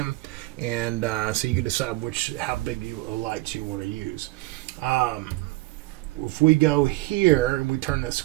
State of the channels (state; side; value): quieter; left; 20.3 dB